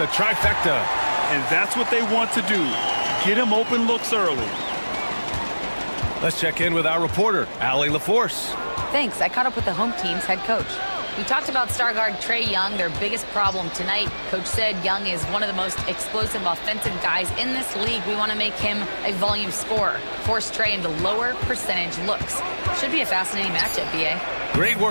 trifecta. And that's what they want to do. Get him open looks early. Let's check in with our reporter, Allie LaForce. Thanks. I caught up with the home team's head coach. We talked about star guard Trae Young, their biggest problem tonight. Coach said Young is one of the most explosive offensive guys in this league. We want to make him a volume scorer, force Trae into lower percentage looks. Should be a fascinating matchup, BA. Great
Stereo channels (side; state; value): both; inverted; correlation -1.00